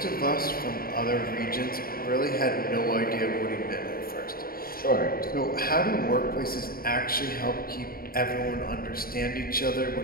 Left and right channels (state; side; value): late; right; 0.43 ms